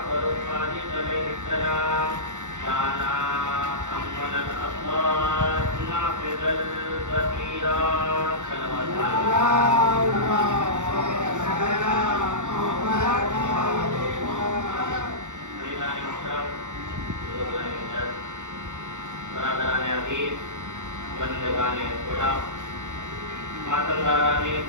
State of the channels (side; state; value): left; late; 0.85 ms